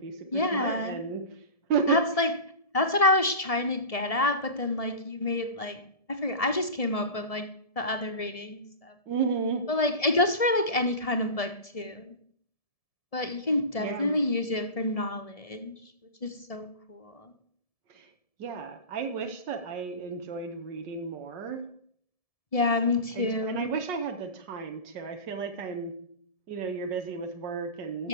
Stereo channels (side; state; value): right; late; 1.7 ms